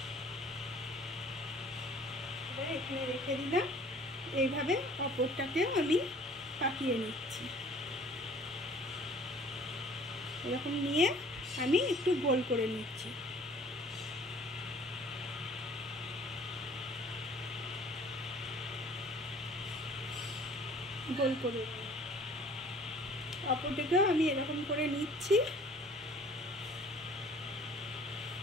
এবার এখানে রেখে দিলাম। এইভাবে অপরটাকেও আমি পাকিয়ে নিচ্ছি। এরকম নিয়ে আমি একটু গোল করে নিচ্ছি। গোল করে অপরটাকেও আমি এরকম করে নিচ্ছি।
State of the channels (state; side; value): normal; both; correlation 0.53